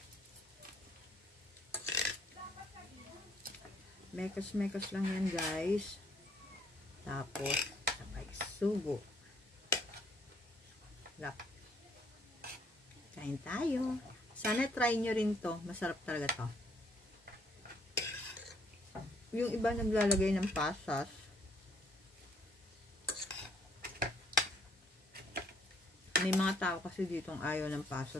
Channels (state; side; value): normal; both; correlation 0.65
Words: Mekos-mekos lang yan guys. Tapos, sabay sugo. Lap. Kain tayo. Sana try nyo rin to. Masarap talaga to. Yung iba naglalagay ng pasas. May mga tao kasi ditong ayaw ng